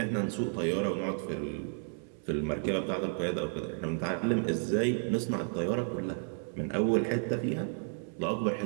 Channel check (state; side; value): silent; left; 56 dB below the other